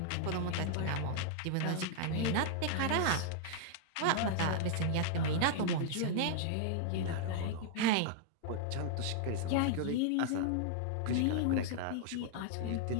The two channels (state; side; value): different; both; correlation -0.01